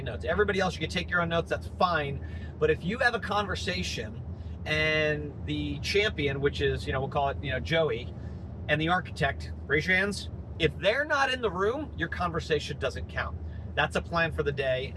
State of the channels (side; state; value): both; identical; correlation 1.00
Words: notes. Everybody else, you can take your own notes, that's fine. But if you have a conversation and the champion, which is, we'll call it, Joey, and the architect, raise your hands. If they're not in the room, your conversation doesn't count. That's a plan for the day,